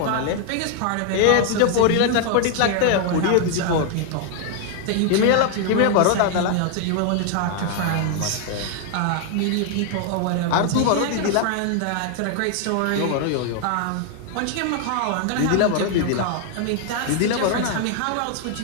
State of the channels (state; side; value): different; both; correlation 0.00